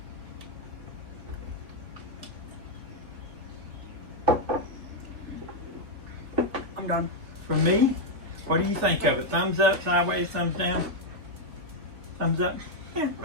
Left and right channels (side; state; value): left; late; 3.1 ms